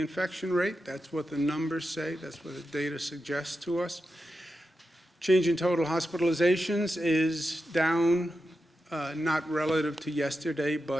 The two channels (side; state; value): both; normal; correlation 0.89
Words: rate. That's what the numbers say. That's what the data suggests to us. Change in total hospitalizations is down, not relative to yesterday,